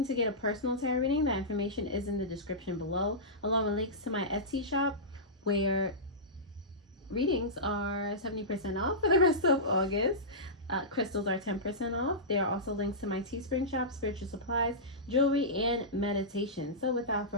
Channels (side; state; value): both; normal; correlation -0.16